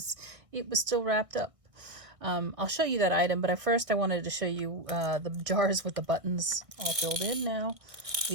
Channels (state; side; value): late; left; 1.6 ms